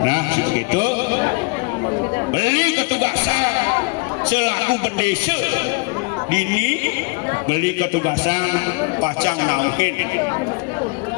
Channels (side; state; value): right; quieter; 29.4 dB